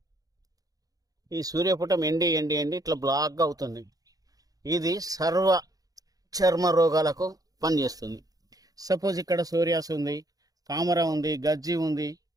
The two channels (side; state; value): left; late; 0.18 ms